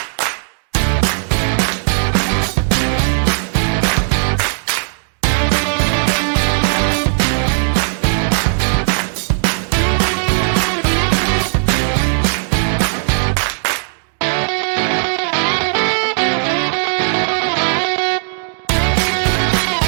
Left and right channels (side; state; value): left; silent; digital silence